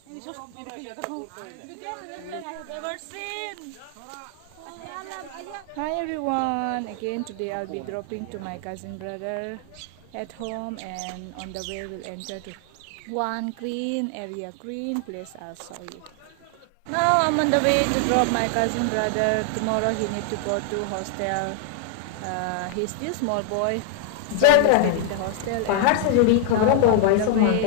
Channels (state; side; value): different; both; correlation 0.00